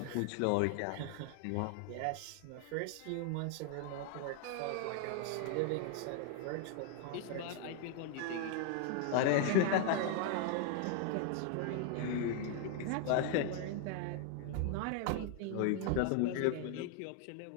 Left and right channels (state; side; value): different; both; correlation 0.00